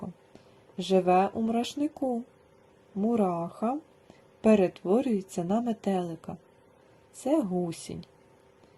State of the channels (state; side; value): identical; both; correlation 1.00